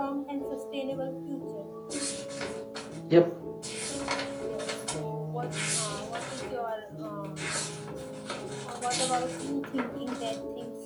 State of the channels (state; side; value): identical; both; correlation 1.00